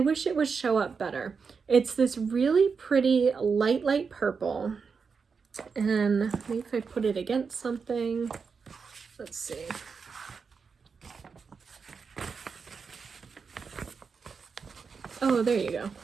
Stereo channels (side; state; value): left; quieter; 5.5 dB